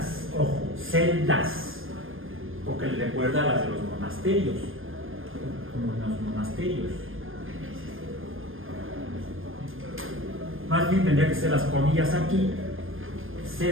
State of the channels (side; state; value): left; late; 0.59 ms